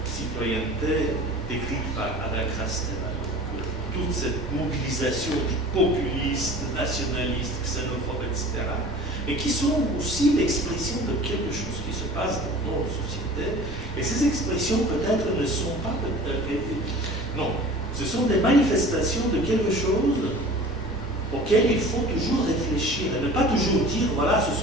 citoyenneté décrite par Ada Krasteva. Toute cette mobilisation populiste, nationaliste, xénophobe, etc., mais qui sont aussi l'expression de quelque chose qui se passe dans nos sociétés. Et ces expressions peut-être ne sont pas... non, ce sont des manifestations de quelque chose auquel il faut toujours réfléchir et ne pas toujours dire, voilà, ce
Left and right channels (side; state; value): both; normal; correlation 0.42